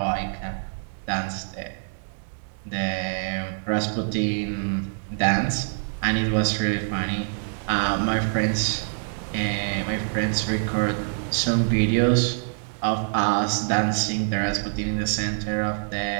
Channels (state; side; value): silent; left; digital silence